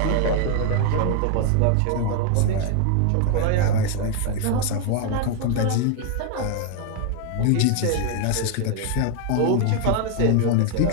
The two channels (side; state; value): both; different; correlation 0.00